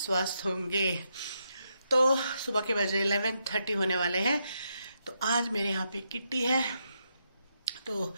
होंगे। तो सुबह के बजे 11:30 होने वाले हैं। तो आज मेरे यहाँ पे किट्टी है। तो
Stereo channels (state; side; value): inverted; both; correlation -0.81